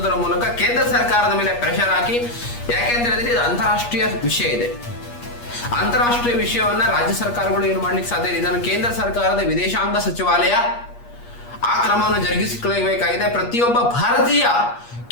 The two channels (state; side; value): late; right; 8.4 ms